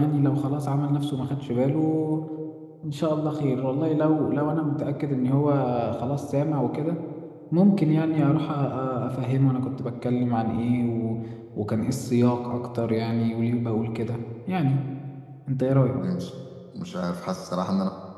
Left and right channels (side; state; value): both; identical; correlation 1.00